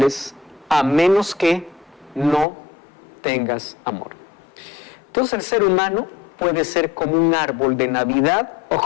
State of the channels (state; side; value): drops out; right; at 2.5 s